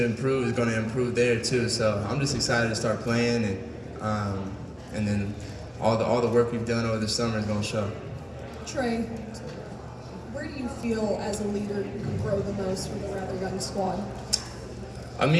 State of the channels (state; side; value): identical; both; correlation 1.00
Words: improve, is going to improve there too. So I'm just excited to start playing, and then all the work we've done over the summer is going to show. Trae, where do you feel as a leader you can grow the most with a rather young squad? I'm